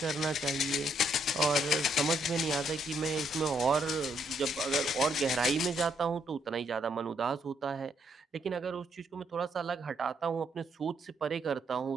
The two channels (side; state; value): both; normal; correlation 0.73